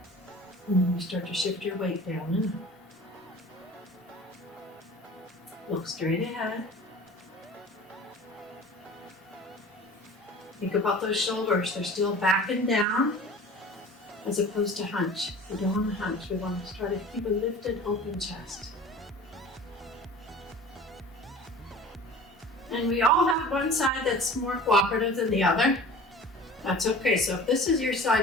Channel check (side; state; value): both; normal; correlation 0.42